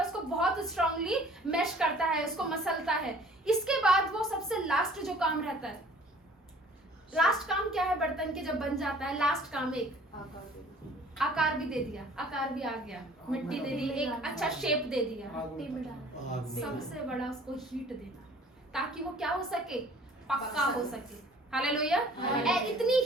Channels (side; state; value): both; normal; correlation 0.52